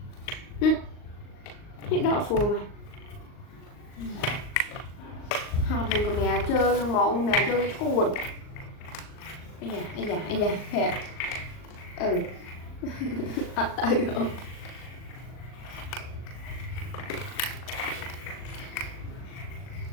những đỏ phù mà họ thường của mẹ chơi nhưng mà ông mẹ chơi chuột ây da hẹ tay không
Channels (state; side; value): late; right; 39 ms